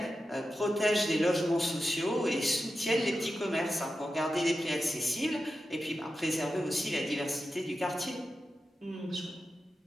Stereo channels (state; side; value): normal; both; correlation 0.91